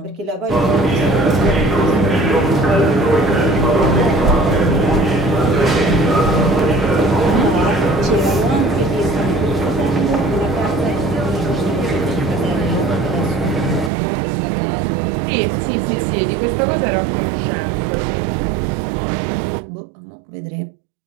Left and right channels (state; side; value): drops out; left; at 13.9 s